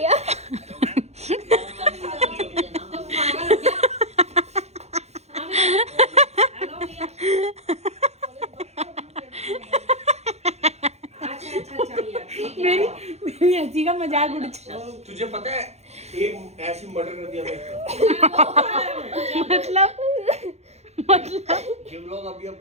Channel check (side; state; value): left; late; 0.31 ms